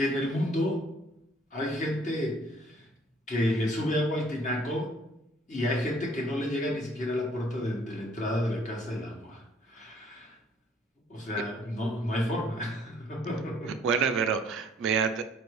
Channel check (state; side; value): normal; both; correlation 0.60